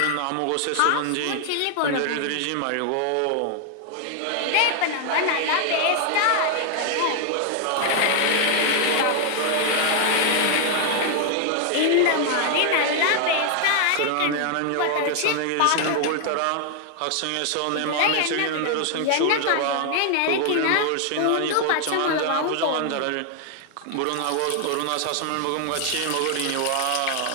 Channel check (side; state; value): both; different; correlation 0.00